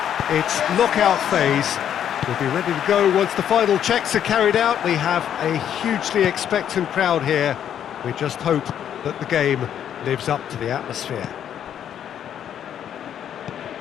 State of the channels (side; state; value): right; quieter; 9.6 dB